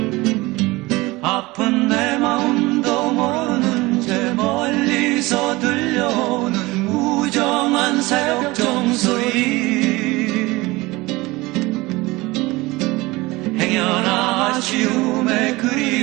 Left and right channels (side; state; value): left; quieter; 21.5 dB